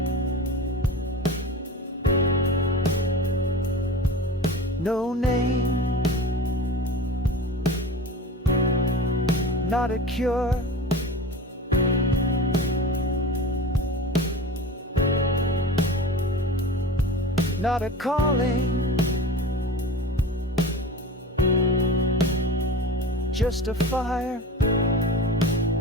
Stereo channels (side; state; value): both; normal; correlation 0.33